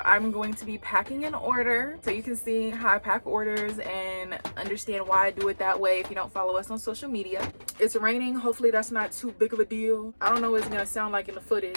I'm going to be packing an order so you can see how I pack orders and understand why I do it that way if you don't follow us on social media. It's raining. Hopefully that's not too big of a deal. I don't know what it's gonna sound like in the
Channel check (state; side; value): inverted; both; correlation -1.00